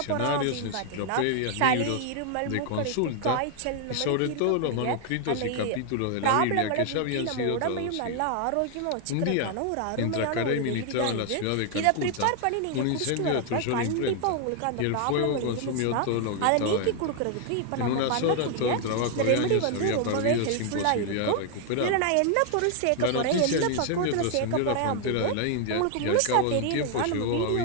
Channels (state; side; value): different; both; correlation 0.00